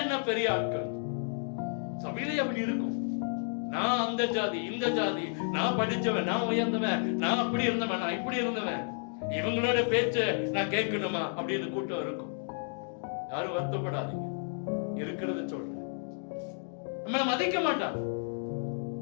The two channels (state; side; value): silent; right; 57 dB below the other